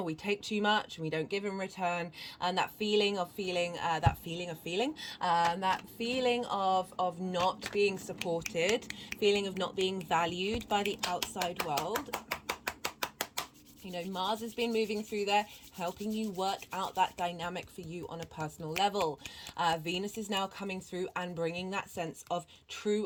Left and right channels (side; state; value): both; identical; correlation 1.00